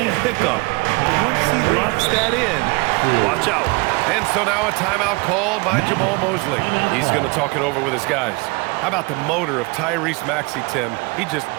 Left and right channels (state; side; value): quieter; left; 26.7 dB